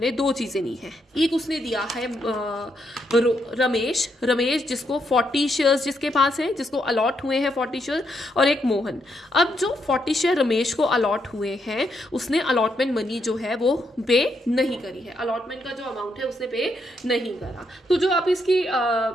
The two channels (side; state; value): both; normal; correlation 0.78